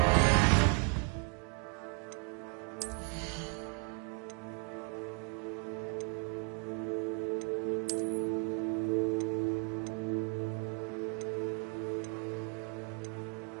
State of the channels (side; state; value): left; quieter; 36.2 dB